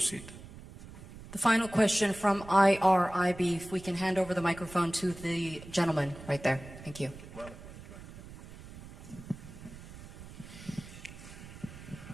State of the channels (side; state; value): right; noise; rumble, 16 dB below the sound